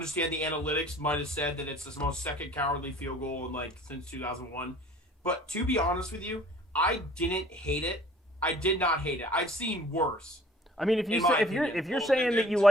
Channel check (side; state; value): both; normal; correlation 0.51